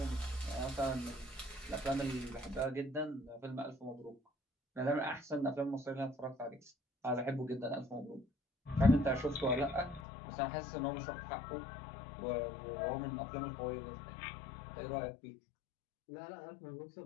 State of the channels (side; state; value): right; drops out; at 10.1 s